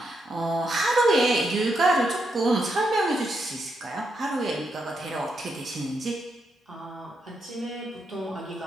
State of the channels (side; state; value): both; normal; correlation 0.81